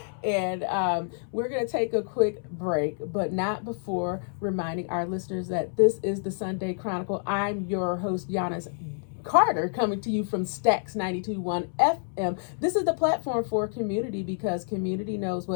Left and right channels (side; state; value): right; silent; 59 dB below the other